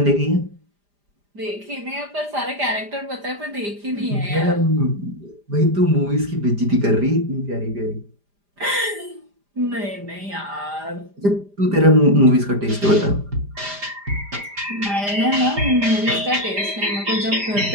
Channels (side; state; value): left; late; 5.0 ms